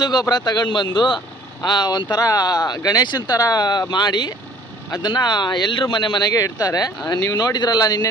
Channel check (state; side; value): normal; both; correlation 0.54